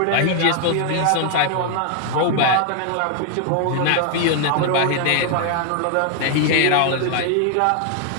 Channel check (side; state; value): both; different; correlation 0.00